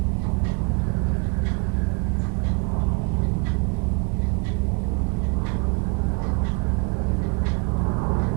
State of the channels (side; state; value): left; quieter; 30.5 dB